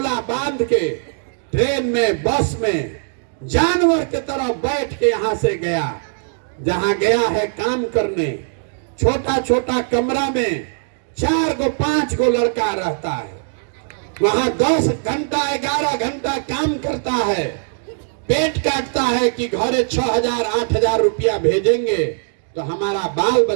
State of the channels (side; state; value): left; silent; digital silence